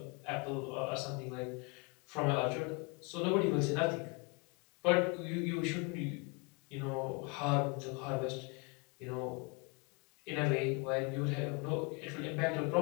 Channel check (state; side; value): quieter; right; 31.2 dB